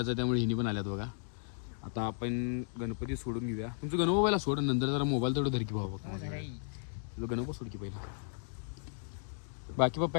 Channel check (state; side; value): silent; right; digital silence